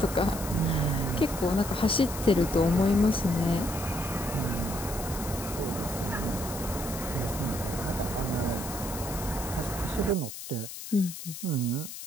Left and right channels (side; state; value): left; noise; hiss, 10 dB below the sound